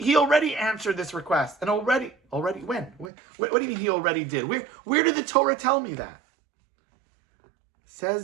already answered this request. And already when? What do you mean he already did? Where did the Torah tell me that?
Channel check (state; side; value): drops out; left; at 3.1 s